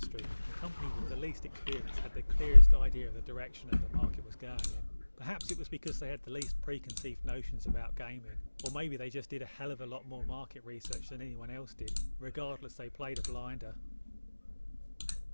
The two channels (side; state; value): both; inverted; correlation -1.00